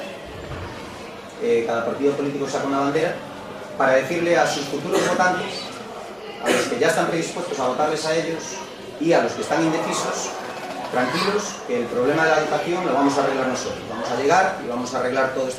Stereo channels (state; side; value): identical; both; correlation 1.00